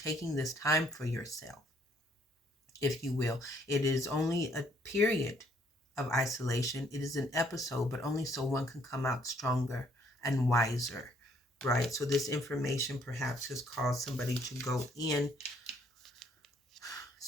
this time for yourself, if you will, it is only a period of isolation. It is an episode, but only so one can come out stronger, and wiser, right? So this information perhaps has caused somebody to go in.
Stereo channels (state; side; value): normal; both; correlation 0.66